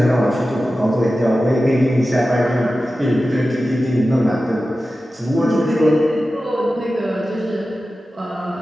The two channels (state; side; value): normal; both; correlation 0.94